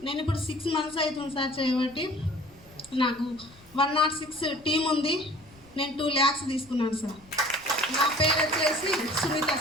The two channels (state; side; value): noise; left; rumble, 25 dB below the sound